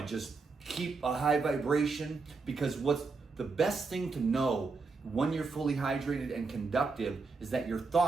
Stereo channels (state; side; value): quieter; left; 4.3 dB